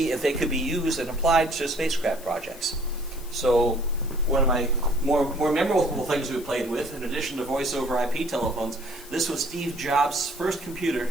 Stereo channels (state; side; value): noise; left; hiss, 19 dB below the sound